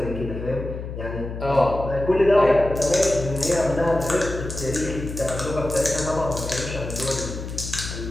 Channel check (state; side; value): noise; left; hum, 8 dB below the sound